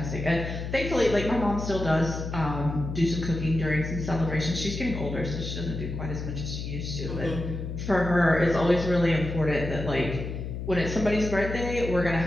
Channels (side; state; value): left; noise; hum, 6 dB below the sound